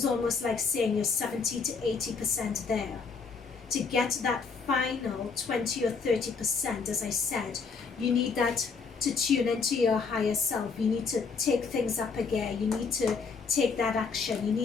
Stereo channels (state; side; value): quieter; right; 5.1 dB